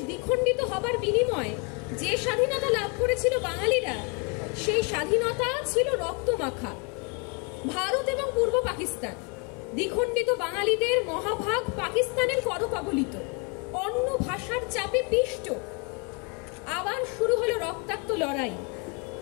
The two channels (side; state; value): right; quieter; 33.6 dB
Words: দ্বিখণ্ডিত হবার বিনিময়ে যে স্বাধীনতা লাভ করেছিল বাঙালিরা, সেই স্বাধীনতা ছিল রক্তমাখা। ভারত এবং পূর্ব পাকিস্তান দ্বিখণ্ডিত বাঙালিদের মহাভাগ পাকিস্তানের করকবলিত, অন্য ভাষার চাপে পিষ্ট। আবার শুরু হলো রক্তাক্ত লড়াই,